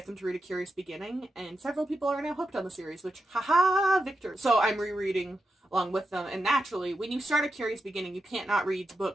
them to read A Curious Beginning, and several people are now hooked on the series, which, haha, victor. So I'm rereading along with them, and naturally, when you start A Curious Beginning, you can't not read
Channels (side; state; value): both; normal; correlation 0.88